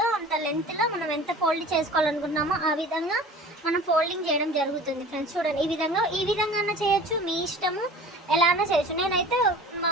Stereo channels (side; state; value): both; normal; correlation 0.42